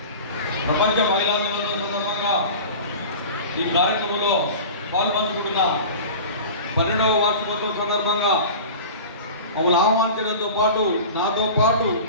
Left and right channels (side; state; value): both; inverted; correlation -0.36